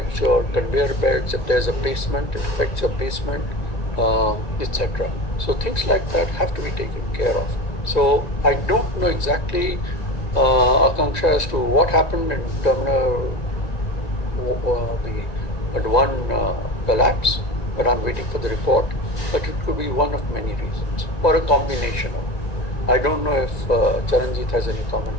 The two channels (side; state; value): right; late; 1.9 ms